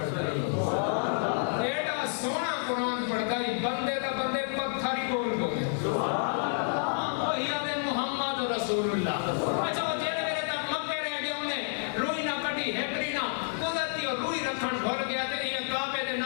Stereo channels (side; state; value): right; silent; digital silence